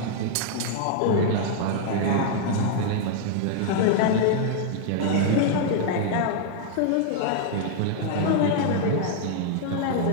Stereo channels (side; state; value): both; different; correlation 0.00